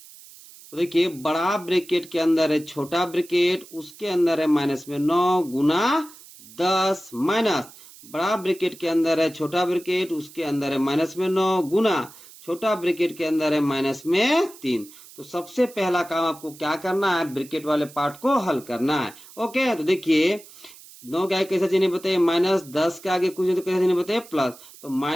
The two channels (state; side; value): noise; right; hiss, 20 dB below the sound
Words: तो देखिए बड़ा ब्रैकेट के अंदर है छोटा ब्रैकेट, उसके अंदर है माइनस में 9 गुना 10 माइनस बड़ा ब्रैकेट के अंदर है छोटा ब्रैकेट, उसके अंदर है माइनस में 9 गुना छोटा ब्रैकेट के अंदर है माइनस में 3। तो सबसे पहला काम आपको क्या करना है, ब्रैकेट वाले पार्ट को हल करना है। ओके, तो देखिए 9 के आगे कैसा चिन्ह बताइए, माइनस, 10 के आगे कुछ नहीं तो कैसा चिन्ह बताइए, प्लस। तो